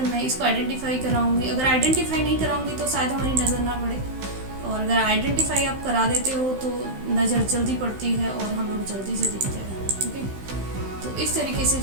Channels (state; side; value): late; left; 15 ms